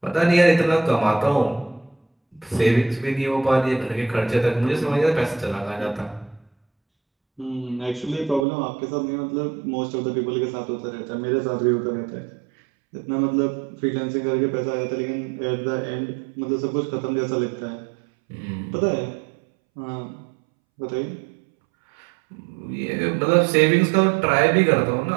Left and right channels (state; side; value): drops out; left; at 8.5 s